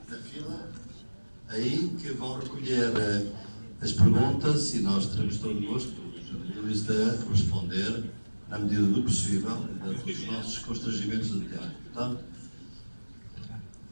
fila, aí que vão recolher as perguntas e nós teremos todo o gosto de responder na medida do possível, dentro dos nossos constrangimentos de tempo. Portanto,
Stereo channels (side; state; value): both; inverted; correlation -1.00